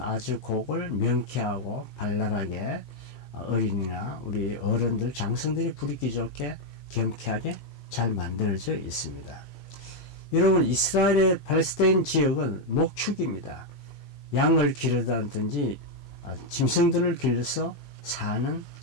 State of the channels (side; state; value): right; late; 15 ms